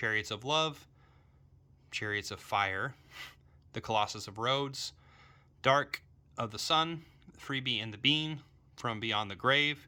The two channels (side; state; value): both; identical; correlation 1.00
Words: of Love, Chariots of Fire, The Colossus of Rhodes, Dark of the Sun, Freebie and the Bean, From Beyond the Grave,